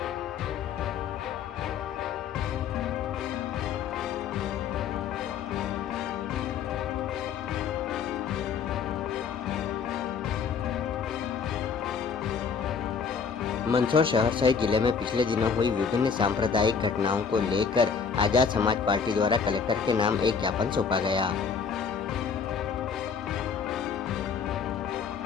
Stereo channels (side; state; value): right; quieter; 6.2 dB